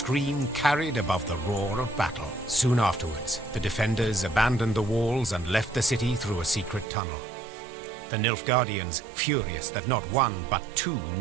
carried above the roar of battle. Soon afterwards, the defenders abandoned the walls and left the city through a secret tunnel. The Nilfgaardians, furious that not one but two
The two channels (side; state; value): left; drops out; at 6.9 s